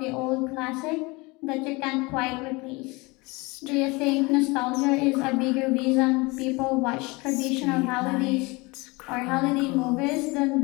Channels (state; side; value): quieter; right; 25.2 dB